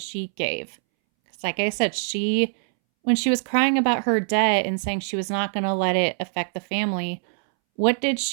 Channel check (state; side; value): silent; left; 63 dB below the other